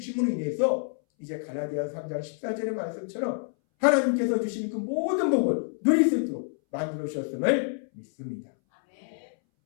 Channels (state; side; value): silent; right; 60 dB below the other